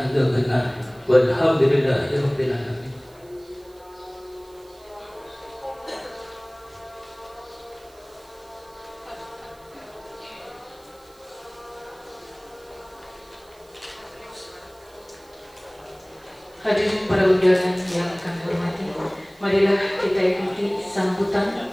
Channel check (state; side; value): noise; right; hiss, 28 dB below the sound